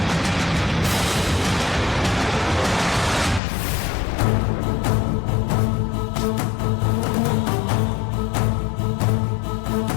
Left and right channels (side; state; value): right; drops out; at 3.4 s